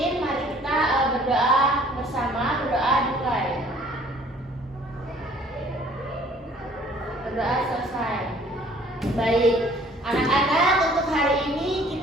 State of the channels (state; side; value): normal; both; correlation 0.55